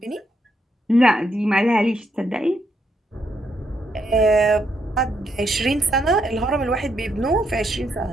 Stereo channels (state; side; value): normal; both; correlation 0.77